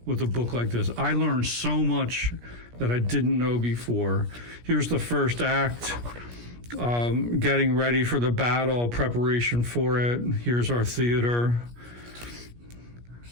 with a book like this. I learned so much that I didn't know before. Here's the first act, getting ready for the battle, preparation for it. Here's our theater.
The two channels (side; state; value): left; late; 17 ms